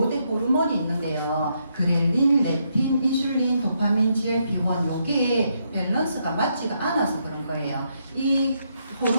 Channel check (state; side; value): inverted; both; correlation -0.77